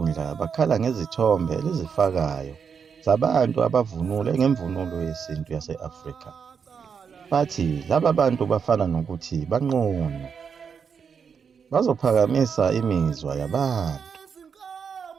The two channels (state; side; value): quieter; left; 6.5 dB